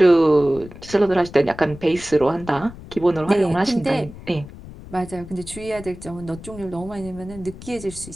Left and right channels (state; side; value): noise; left; rumble, 16 dB below the sound